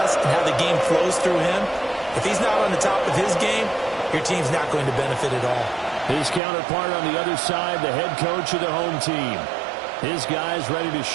and how the game flows through him, if he's not on the top of his game, your team's not going to benefit at all. His counterpart on the other side, the head coach of the home team. His guys ready to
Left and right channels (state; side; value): drops out; left; at 6.4 s